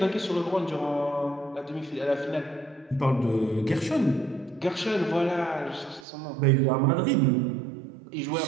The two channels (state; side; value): drops out; left; at 6.1 s